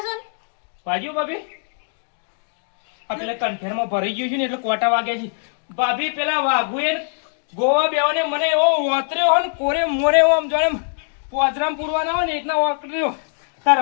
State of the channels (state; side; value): silent; right; digital silence